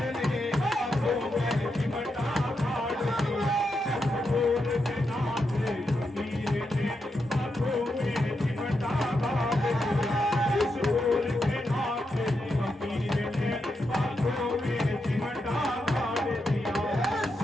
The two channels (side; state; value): both; normal; correlation 0.85